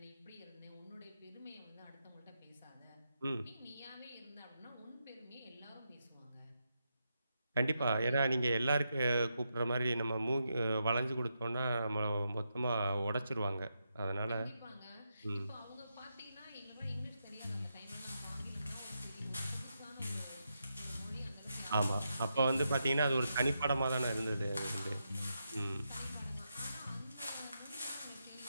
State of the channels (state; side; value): inverted; both; correlation -0.85